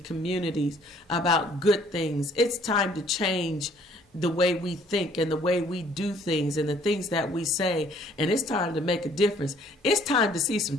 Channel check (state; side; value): normal; both; correlation 0.60